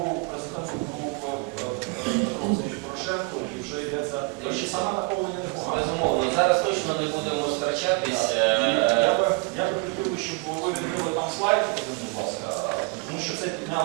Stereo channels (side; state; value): left; quieter; 29.2 dB